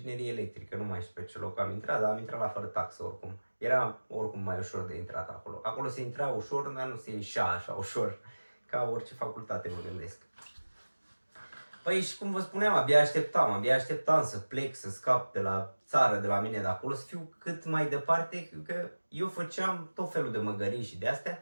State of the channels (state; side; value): inverted; both; correlation -1.00